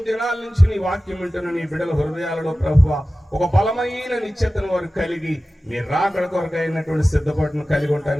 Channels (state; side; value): normal; both; correlation 0.96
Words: దినాల నుంచి నీ వాక్యం వింటున్న నీ బిడ్డల హృదయాలలో ప్రభువా ఒక బలమైన నిశ్చయతను వారు కలిగి మీ రాకడ కొరకు అయినటువంటి సిద్ధపాటును కలిగి